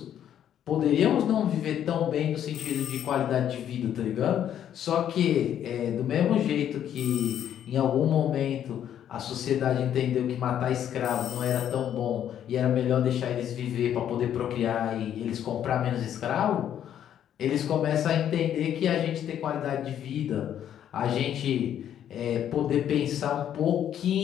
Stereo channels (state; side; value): quieter; right; 10.1 dB